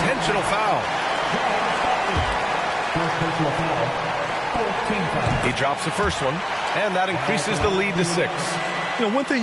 foul. He drops the first one, and that increases the lead to 6. One thing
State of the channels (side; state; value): both; identical; correlation 1.00